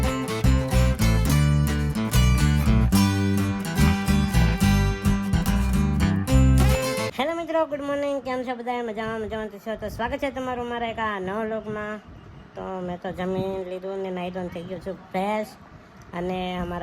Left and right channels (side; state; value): both; identical; correlation 1.00